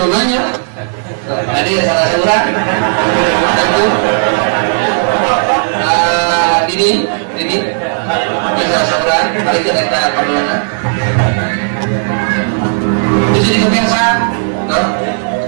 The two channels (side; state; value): left; silent; digital silence